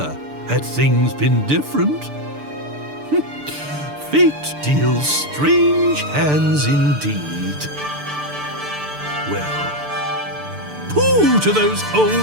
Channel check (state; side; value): late; left; 6.8 ms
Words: had things been different. Fate deals strange hands indeed. Well, pooh to those old